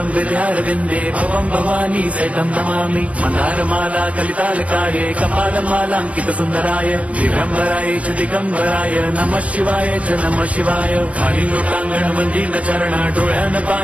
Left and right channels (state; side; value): late; left; 0.065 ms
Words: हृदयारविन्दे भवं भवानी सहितं नमामि। मन्दारमाला कलितालकाये कपालमालाङ्कितसुन्दराय दिगम्बराय च दिगम्बराय नमः शिवाय च नमः शिवाय। खाली लोकांगण मंदिर चरण डोळ्यान